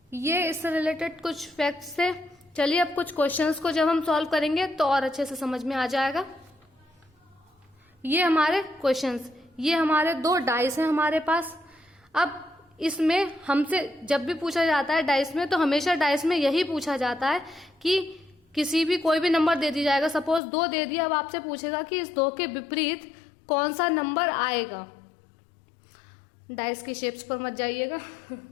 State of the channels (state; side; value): drops out; right; at 20.4 s